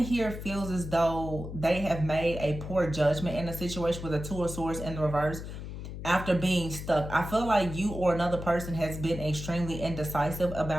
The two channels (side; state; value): left; noise; hum, 8 dB below the sound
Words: feels as though they have made a poor judgment in a situation with the Two of Swords in the reverse after being stuck. I feel like you or another person has been extremely indecisive